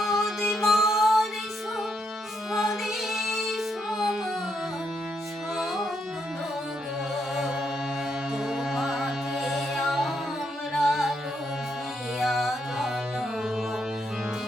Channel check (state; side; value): normal; both; correlation 0.78